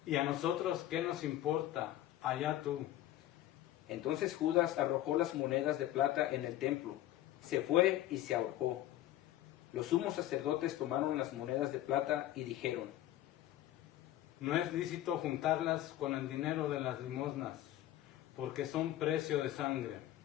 ¿Y a nosotros qué nos importa? Allá tú. entonces Judas arrojó las monedas de plata en el templo, se fue y se ahorcó. Los sumos sacerdotes tomaron las monedas de plata y dijeron, No es lícito juntarlas con el dinero de las limosnas, porque son precio de sangre.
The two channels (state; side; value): quieter; right; 13.8 dB